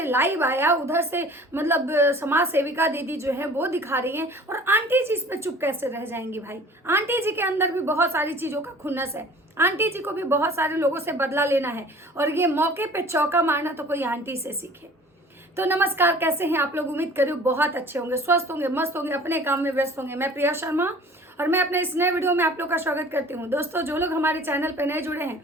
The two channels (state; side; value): normal; both; correlation 0.47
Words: लाइव आया, उधर से मतलब समाज सेविका दीदी जो है वो दिखा रही हैं, और आंटी जी इस पे चुप कैसे रह जाएंगी। भाई आंटी जी के अंदर भी बहुत सारी चीज़ों का खुन्नस है। आंटी जी को भी बहुत सारे लोगों से बदला लेना है, और ये मौके पे चौका मारना तो कोई आंटी से सीखे। तो नमस्कार, कैसे हैं आप लोग? उम्मीद करूँ बहुत अच्छे होंगे, स्वस्थ होंगे, मस्त होंगे, अपने काम में व्यस्त होंगे। मैं प्रिया शर्मा और मैं अपने इस नए वीडियो में आप लोग का स्वागत करती हूँ। दोस्तों, जो लोग हमारे चैनल पे नए जुड़े हैं,